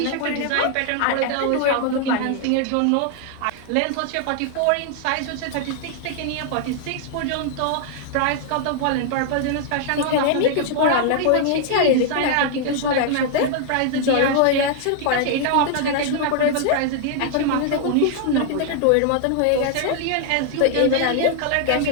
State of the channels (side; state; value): both; different; correlation 0.00